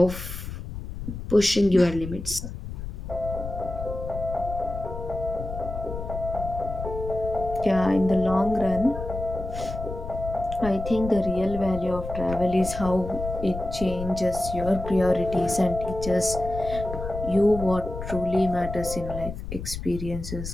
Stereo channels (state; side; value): noise; left; rumble, 8 dB below the sound